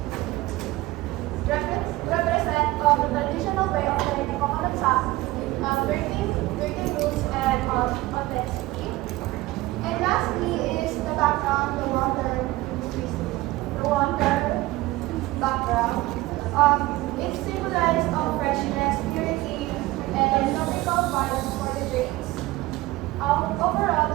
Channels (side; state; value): left; quieter; 18.7 dB